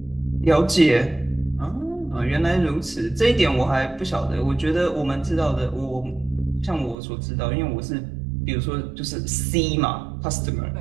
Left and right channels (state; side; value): drops out; left; at 7.0 s